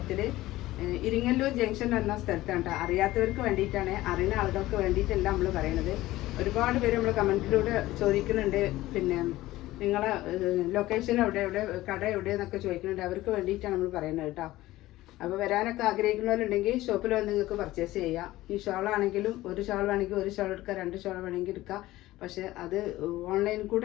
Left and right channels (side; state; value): right; quieter; 16.8 dB